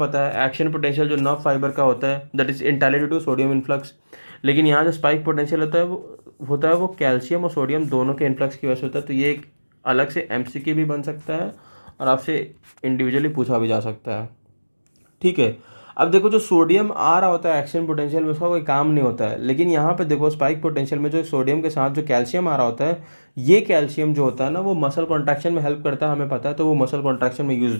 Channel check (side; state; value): both; inverted; correlation -1.00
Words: है एक्शन पोटेंशियल जो नर्व फाइबर का होता है that is entailed to sodium influx, लेकिन यहाँ जो स्पाइक पोटेंशियल होता है वो कैल्शियम और सोडियम दोनों के इन्फ्लक्स की वजह से होता है। तो ये एक अलग से एमसीक्यू भी बन सकता है और आपसे इंडिविजुअली पूछा भी जा सकता है, ठीक है। अब देखो जो सोडियम आ रहा होता है एक्शन पोटेंशियल में, उसका कोई काम नहीं होता है, लेकिन यहाँ पे देखो स्पाइक पोटेंशियल में जो सोडियम के साथ जो कैल्शियम आ रहा होता है, ये कैल्शियम जो होता है ना वो मसल कॉन्ट्रैक्शन में हेल्प करता है, हमें पता है, तो वो मसल कॉन्ट्रैक्शन में यूज हो